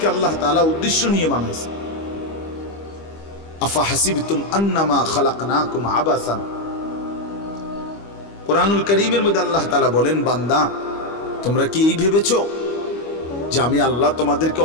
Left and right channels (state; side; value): late; right; 25 ms